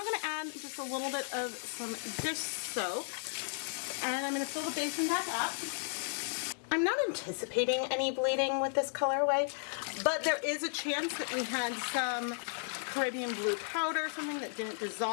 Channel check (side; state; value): right; silent; digital silence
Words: going to add just a little bit of some dish soap, and I'm going to fill the basin back up. I'm not anticipating any bleeding with this colorway, but there is a chance that we had some Caribbean blue powder, something that didn't